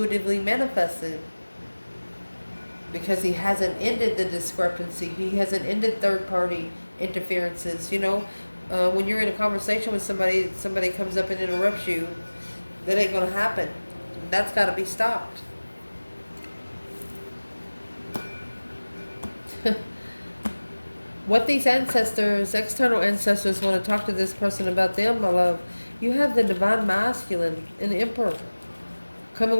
manifested, because he hasn't ended the discrepancy. He hasn't ended third party interferences. You know, when you're in a conversation with somebody comes up and interrupts you, that ain't going to happen. That's got to be stopped. What these ancestors, external ancestors, want to talk to this person about them, my love. You have the divine masculine and the Emperor coming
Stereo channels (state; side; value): inverted; both; correlation -1.00